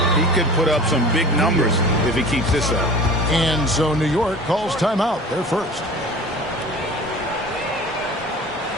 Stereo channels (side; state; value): both; normal; correlation 0.39